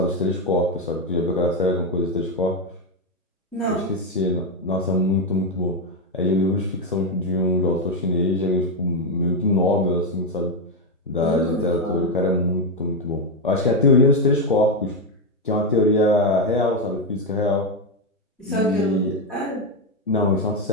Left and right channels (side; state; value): both; normal; correlation 0.06